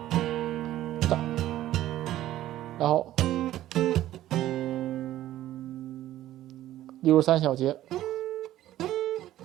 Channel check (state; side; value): quieter; left; 13.8 dB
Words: 然后63小节，